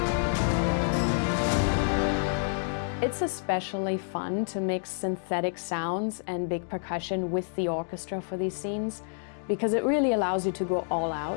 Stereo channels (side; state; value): right; silent; digital silence